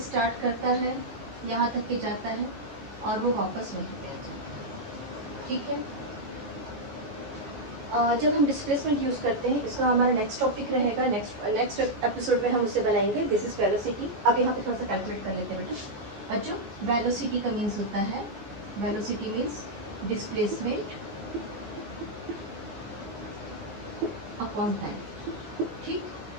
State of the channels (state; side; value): late; left; 15 ms